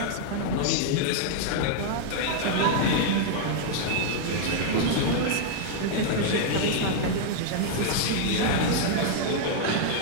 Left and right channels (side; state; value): both; different; correlation 0.00